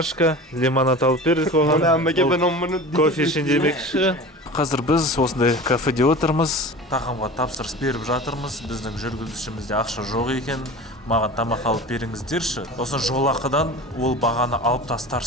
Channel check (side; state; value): both; normal; correlation 0.36